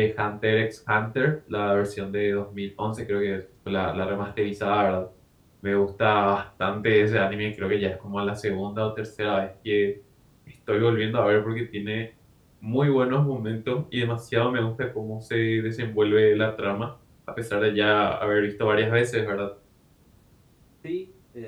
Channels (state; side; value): identical; both; correlation 1.00